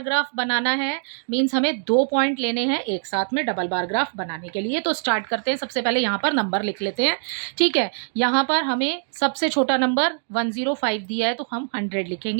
ग्राफ बनाना है, मीन्स हमें 2 पॉइंट लेने हैं एक साथ में डबल बार ग्राफ बनाने के लिए। तो स्टार्ट करते हैं, सबसे पहले यहाँ पर नंबर लिख लेते हैं, ठीक है। यहाँ पर हमें सबसे छोटा नंबर 105 दिया है तो हम 100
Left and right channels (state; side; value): silent; left; digital silence